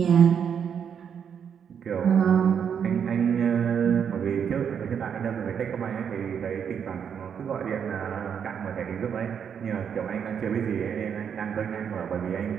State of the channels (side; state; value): left; quieter; 7.7 dB